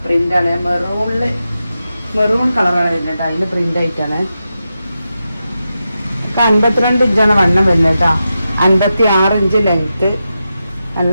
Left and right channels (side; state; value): both; inverted; correlation -0.90